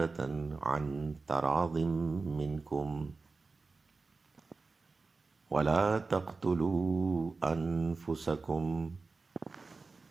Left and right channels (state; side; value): quieter; left; 4.0 dB